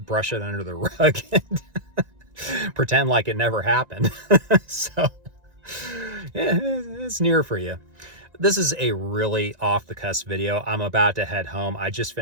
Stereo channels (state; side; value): late; left; 1.9 ms